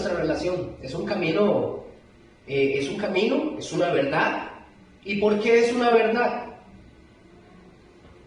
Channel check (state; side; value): identical; both; correlation 1.00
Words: relación. Es un camino, es una verdad. ¿Y por qué es una verdad?